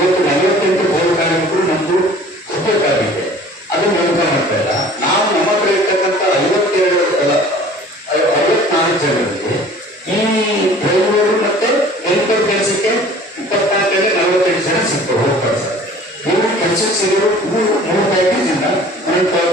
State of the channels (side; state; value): both; normal; correlation 0.48